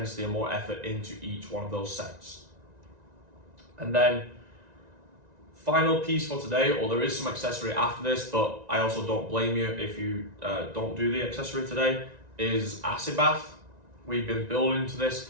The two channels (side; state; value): left; late; 1.9 ms